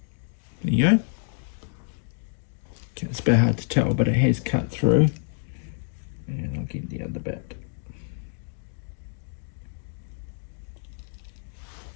There you go. Okay, it's a bit hard to tell, but it has cut through. And I'll get the other bit.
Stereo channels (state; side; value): silent; right; 60 dB below the other